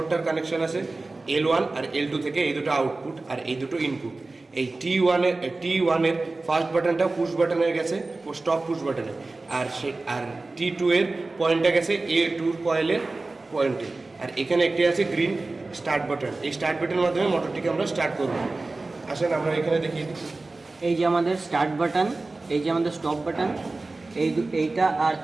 কানেকশন আছে L1 আর L2 থেকে, এই দুটো আউটপুট আর এই দুটো ইনপুট। এই T1-এর ফার্স্ট বাটনটা পুশ বাটনে গেছে, স্টপ পুশ বাটনে। আর T2 এর পয়েন্টটা গেছে A2 কয়েলের পয়েন্টে। আর এখানে একটি আছে গ্রিন স্টার্ট বাটন। এই স্টার্ট বাটনের মাধ্যমে মোটরটিকে আমরা স্টার্ট করব। আসেন আমরা এখানে দেখি। এই যে আমাদের স্টার্ট বাটন, এই যে আমাদের স্টপ বাটন, এইটা আর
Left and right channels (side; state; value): left; quieter; 3.3 dB